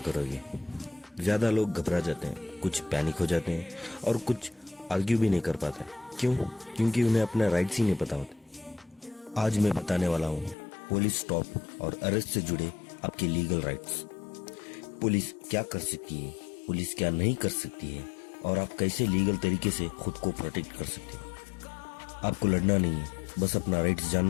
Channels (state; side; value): drops out; right; at 10.6 s